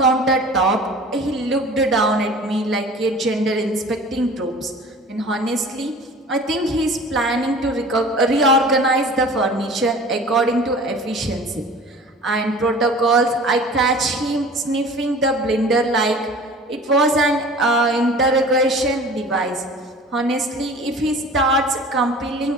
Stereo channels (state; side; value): normal; both; correlation 0.43